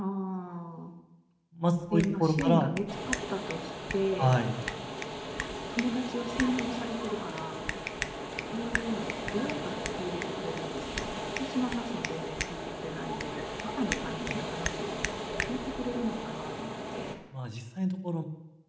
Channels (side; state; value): both; identical; correlation 1.00